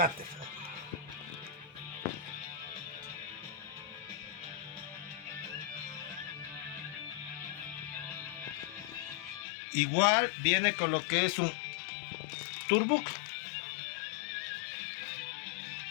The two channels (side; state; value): right; drops out; at 9.5 s